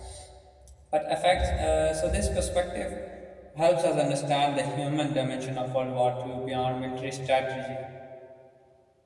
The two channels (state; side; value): identical; both; correlation 1.00